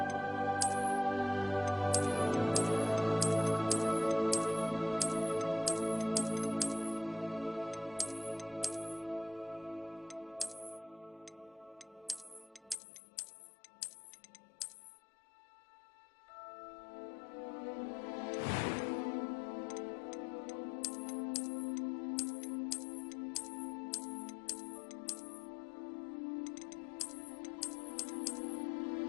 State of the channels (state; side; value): drops out; right; at 12.8 s